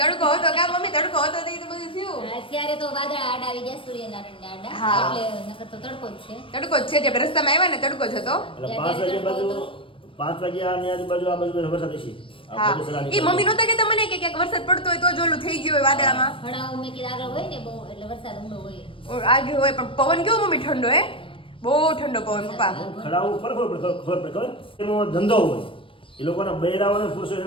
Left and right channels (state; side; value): late; right; 0.25 ms